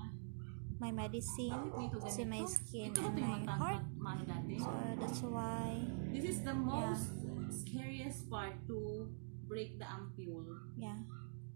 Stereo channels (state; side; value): silent; left; digital silence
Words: my medicine to my skin and my heart. So that's why this is the most scariest part, to break the ampule. Yeah.